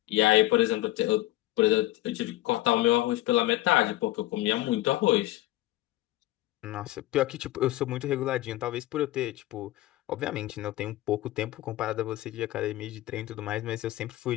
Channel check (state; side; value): quieter; right; 16.6 dB